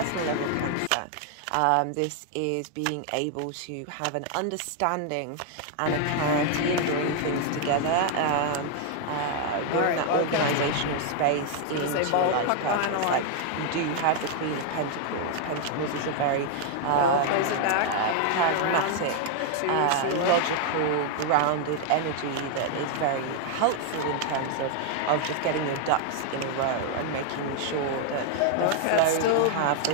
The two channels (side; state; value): both; different; correlation 0.00